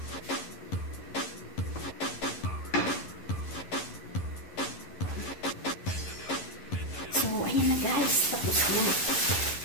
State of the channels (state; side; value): late; right; 11 ms